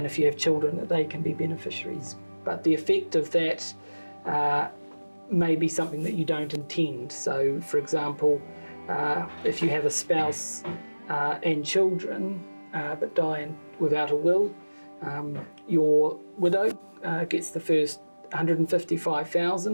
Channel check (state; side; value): inverted; both; correlation -1.00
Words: if you have children, that they can be beneficiaries. But the effect of that may be something that you don't intend. So, for example, if you have a spouse and children but die without a will, your widow gets the first